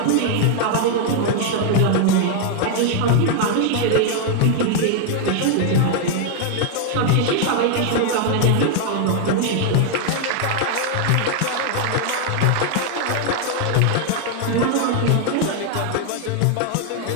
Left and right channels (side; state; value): both; different; correlation 0.00